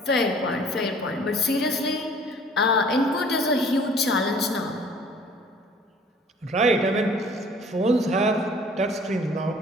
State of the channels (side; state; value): both; normal; correlation 0.53